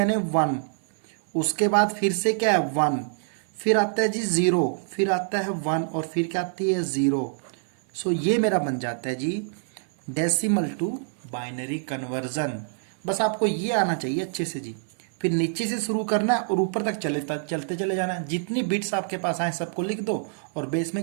1, उसके बाद फिर से क्या है 1, फिर आता है जी 0, फिर आता है 1 और फिर क्या आती है 0। सो ये मेरा बन जाता है जी डेसिमल टू बाइनरी कन्वर्जन। बस आपको ये आना चाहिए अच्छे से जी। फिर नीचे से शुरू करना है और ऊपर तक चलते चले जाना है। जितनी बिट्स आपके पास आए सबको लिख दो और बेस में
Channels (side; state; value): left; silent; 56 dB below the other